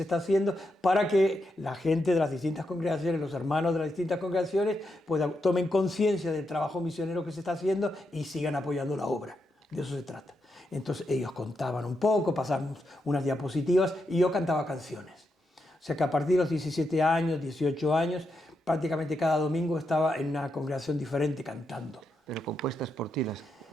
está haciendo para que la gente de las distintas congregaciones, los hermanos de las distintas congregaciones, pues tomen conciencia del trabajo misionero que se está haciendo y sigan apoyando la obra. De eso se trata. Entonces ellos contaban un poco, pasamos unas diapositivas y yo cantaba canciones. O sea que a partir de los 17 años, 18 años, prácticamente cada domingo estaba en una congregación diferente cantando. ¿Pero compuestas por ti?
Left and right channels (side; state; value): both; normal; correlation 0.84